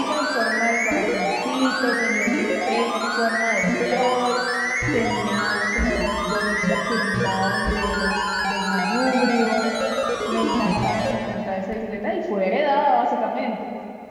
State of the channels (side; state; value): both; identical; correlation 1.00